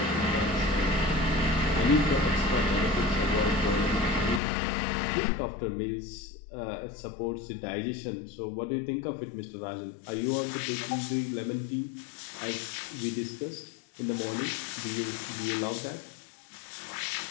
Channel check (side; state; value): right; drops out; at 4.4 s